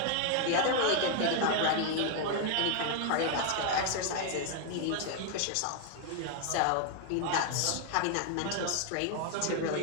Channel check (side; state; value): both; different; correlation 0.00